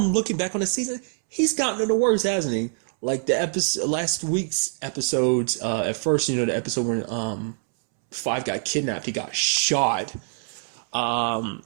looking back on the season, he's gotten it the worst, hasn't he? Like the last week's episodes. At first, you know, the episode when Five got kidnapped, he got shot. But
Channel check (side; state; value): left; silent; 62 dB below the other